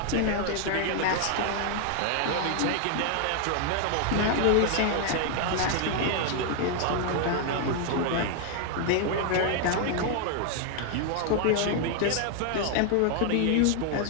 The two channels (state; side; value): different; both; correlation 0.00